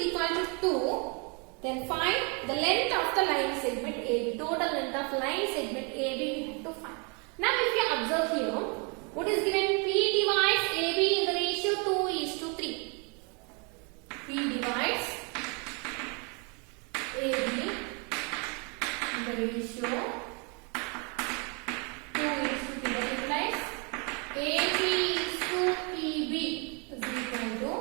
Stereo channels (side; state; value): left; quieter; 34.1 dB